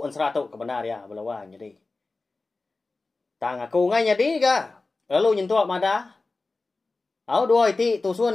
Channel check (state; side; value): quieter; right; 3.5 dB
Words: Ansra tu kebenar ya belawan jadi. Tang aku ngai jadi ga. Lalu nyentuak madah. Dua iti